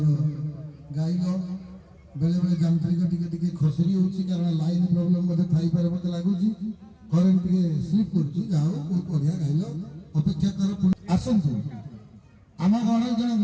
गाइल बेले बेले यांत्रिक टिके खसरी होची कारण लाइन प्रॉब्लम मते थाई पारे मते लागुची करंट टिके स्लिप करची जाओ बहुत बढ़िया गाइल अपेक्षा कर आसंतु आम गण जन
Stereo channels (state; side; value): identical; both; correlation 1.00